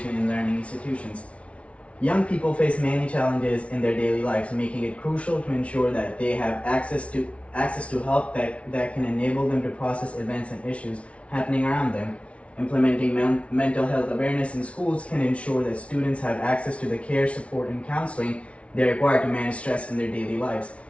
in learning institutions. Young people face many challenges in their daily lives, making it crucial to ensure that they have access to help that can enable them to process events and issues happening around them. Implementing mental health awareness in schools can ensure that students have access to the care, support, and counseling they require to manage stress in their daily lives.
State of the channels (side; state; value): right; late; 0.062 ms